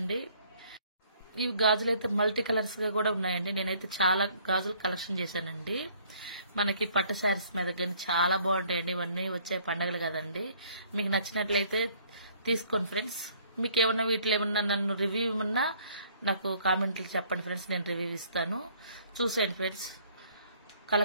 ఇవి గాజులు అయితే మల్టీ కలర్స్ గా కూడా ఉన్నాయండి. నేనైతే చాలా గాజులు కలెక్షన్ చేశానండి. మనకి పట్టు శారీస్ మీద కానీ చాలా బాగుంటాయండి. ఇవన్నీ వచ్చే పండుగలు కదండి. మీకు నచ్చినట్లయితే తీసుకోండి ఫ్రెండ్స్. మీకు ఏమన్నా వీటిలో ఏమన్నా నన్ను రివ్యూ ఏమన్నా నాకు కామెంట్లు చెప్పండి ఫ్రెండ్స్, నేను రివ్యూ ఇస్తాను. చూసేయండి ఫ్రెండ్స్,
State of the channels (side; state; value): both; inverted; correlation -0.60